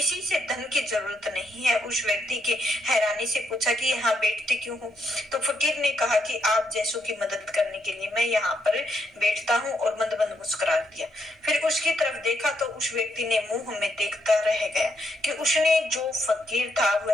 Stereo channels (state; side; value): normal; both; correlation 0.77